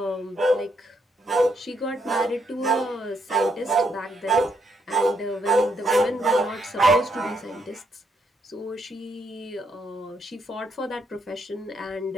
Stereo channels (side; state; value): both; normal; correlation 0.76